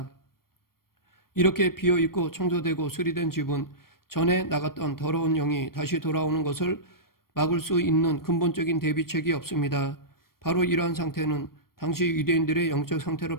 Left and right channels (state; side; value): late; right; 0.93 ms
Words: 이렇게 비어있고 청소되고 수리된 집은 전에 나갔던 더러운 영이 다시 돌아오는 것을 막을 수 있는 근본적인 대비책이 없습니다. 바로 이러한 상태는 당시 유대인들의 영적 상태를